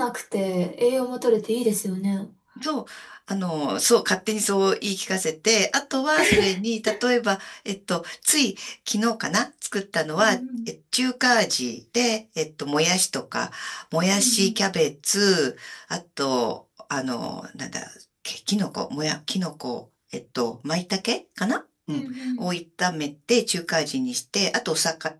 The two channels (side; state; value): both; identical; correlation 1.00